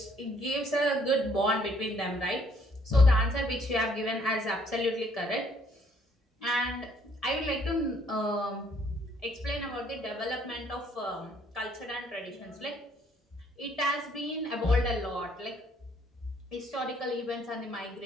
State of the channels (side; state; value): both; normal; correlation 0.65